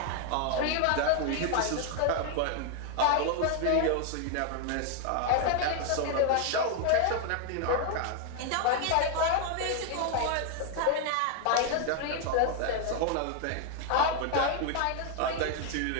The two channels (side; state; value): both; different; correlation 0.00